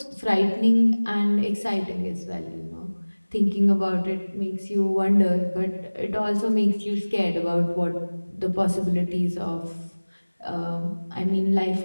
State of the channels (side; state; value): both; inverted; correlation -1.00